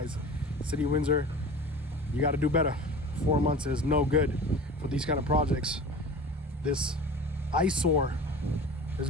City of Windsor, you got to do better. 4 months is no good for these kind of projects. This eyesore is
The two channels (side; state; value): both; normal; correlation 0.37